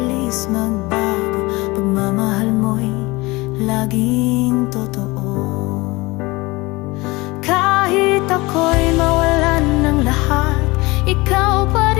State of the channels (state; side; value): quieter; right; 22.8 dB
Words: magbago, pagmamahal mo'y laging totoo. Kahit ako'y mawalan ng lahat, ikaw pa